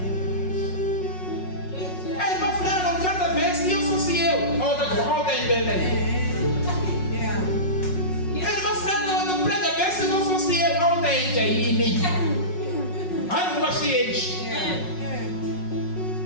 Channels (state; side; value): late; right; 5.4 ms